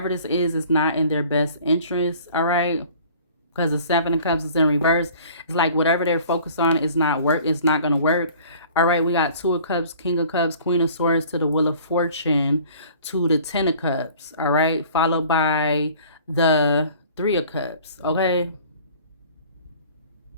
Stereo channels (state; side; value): inverted; both; correlation -0.49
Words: this is not in their best interest. All right. because the Seven of Cups is in reverse. It's like whatever they're focused on is not work. It's not going to work. All right, we got Two of Cups, King of Cups, Queen of Swords to the Wheel of Fortune to the Ten of Cups. All right, followed by the Three of Cups. Okay.